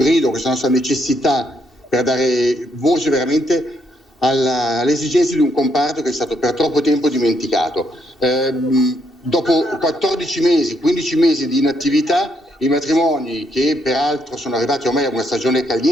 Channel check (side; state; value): both; normal; correlation 0.74